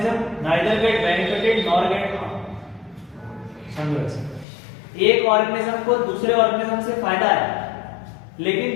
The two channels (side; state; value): right; drops out; at 4.5 s